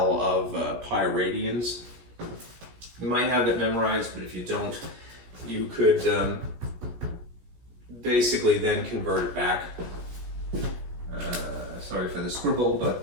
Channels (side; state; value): left; late; 16 ms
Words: of pi radians? You might have it memorized, but if you don't, you could basically then convert it back. Sorry for the scribble,